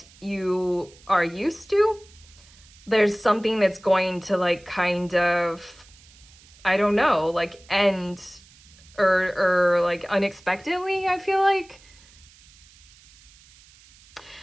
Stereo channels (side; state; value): right; noise; hiss, 26 dB below the sound